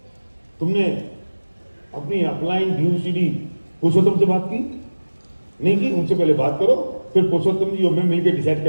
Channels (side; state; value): both; inverted; correlation -1.00